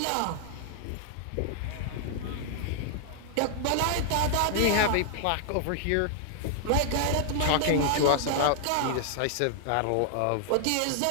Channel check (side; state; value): both; different; correlation -0.01